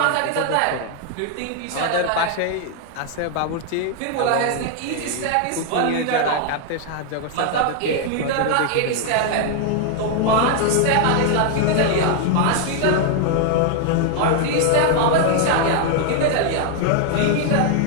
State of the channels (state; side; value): different; both; correlation 0.00